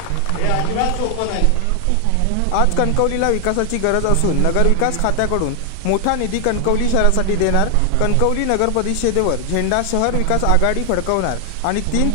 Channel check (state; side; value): different; both; correlation 0.00